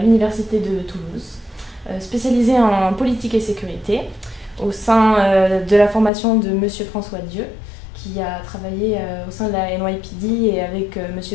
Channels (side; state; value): right; drops out; at 6.1 s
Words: de Toulouse, spécialisé en politique et sécurité, au sein de la formation de Monsieur François Dieu, qui a travaillé au sein de la NYPD et avec